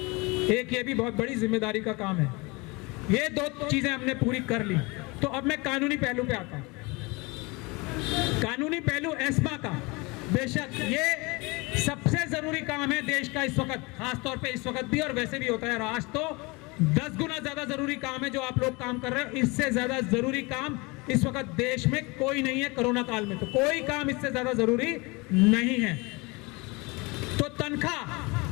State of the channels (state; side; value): quieter; right; 26.1 dB